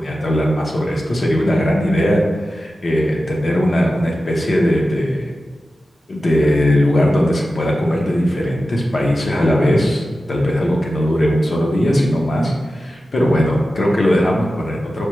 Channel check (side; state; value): both; normal; correlation 0.93